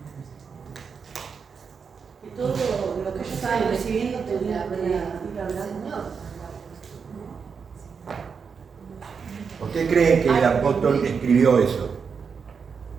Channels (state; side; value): quieter; left; 5.9 dB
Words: Que todo lo que ellos estaban recibiendo tenía que ir al Señor. ¿Por qué creen que el apóstol escribió eso?